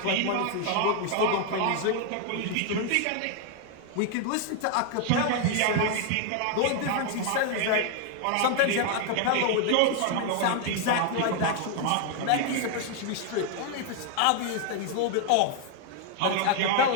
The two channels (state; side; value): different; both; correlation 0.00